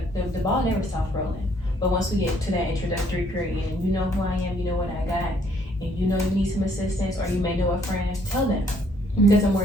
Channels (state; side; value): normal; both; correlation 0.65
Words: the ball never stops rolling. But once we get to that introductory period, and you know who I am, you know what I got, and you know you need some assistance, or you may know a friend, tell them. Because the more